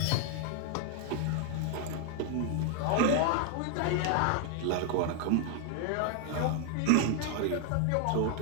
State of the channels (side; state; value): both; different; correlation 0.00